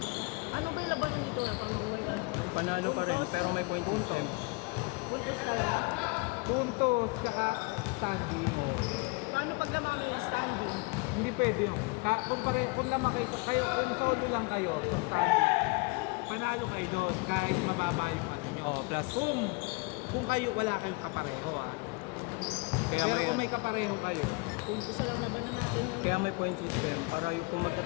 Ano ba yung labanan dito? Panalo pa rin, pero may point system. Puntos tayo. Puntos, tsaka standing. Paano pag lamang may standing? Hindi pwede yun. Kung naman kayo, kung solo lang kayo, kung standing, panalo kayo doon kahit mababa yung ano nyo. Oh, plus. Kung kayo, wala kayong kapareho Pero kung may kapareho kayo, Puntos na lang labanan natin. Kaya may point system. Para yung kung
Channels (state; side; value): quieter; right; 28.4 dB